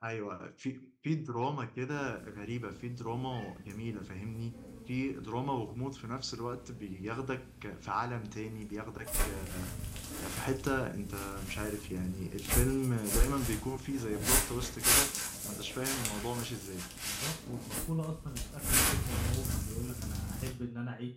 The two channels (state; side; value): identical; both; correlation 1.00